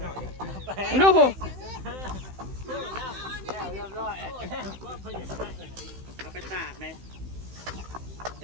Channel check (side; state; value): left; late; 16 ms